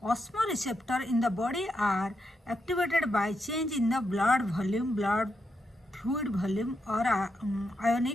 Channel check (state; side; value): normal; both; correlation 0.83